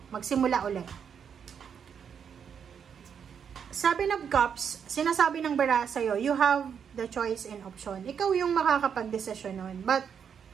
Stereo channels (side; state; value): left; quieter; 7.4 dB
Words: Magsimula ulit. Sabi ng Cups, sinasabi ng bara sa'yo, you have the choice and option. Ikaw yung makakapag-desisyon nun. But,